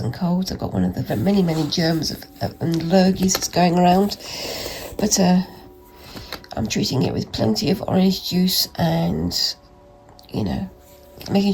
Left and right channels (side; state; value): both; identical; correlation 1.00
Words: colds. I've got one of the many germs and lurgies that's going around, but I'm treating it with plenty of orange juice and, you know, making